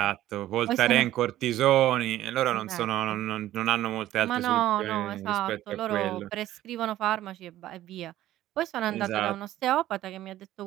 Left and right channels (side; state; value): left; quieter; 14.0 dB